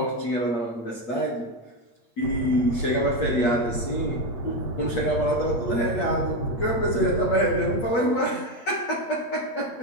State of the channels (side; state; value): right; late; 8.5 ms